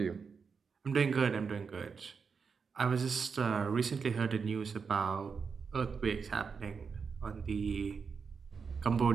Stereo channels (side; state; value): left; quieter; 5.6 dB